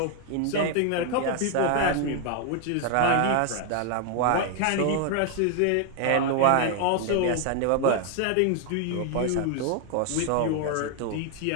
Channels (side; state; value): both; different; correlation 0.00